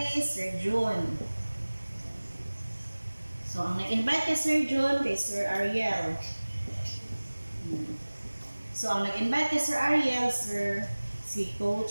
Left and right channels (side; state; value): both; inverted; correlation -1.00